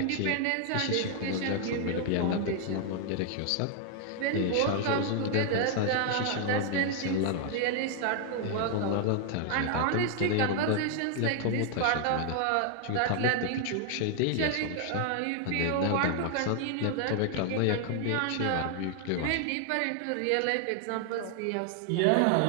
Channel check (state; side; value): different; both; correlation 0.00